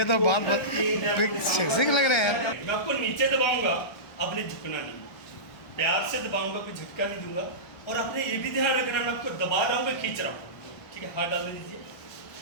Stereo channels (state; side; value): late; right; 1.3 ms